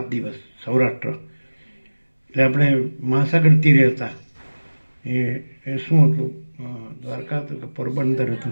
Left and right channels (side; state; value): both; inverted; correlation -1.00